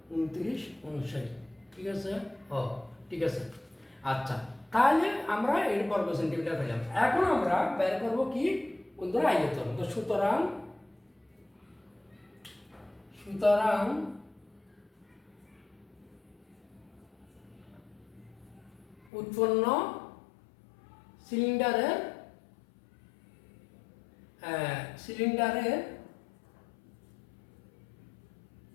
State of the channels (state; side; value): drops out; right; at 19.1 s